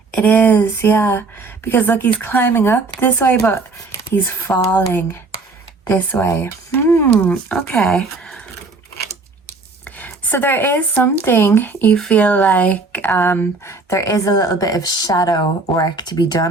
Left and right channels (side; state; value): left; quieter; 3.7 dB